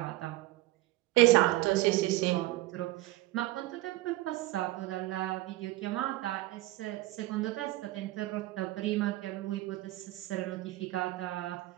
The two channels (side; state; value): left; quieter; 18.0 dB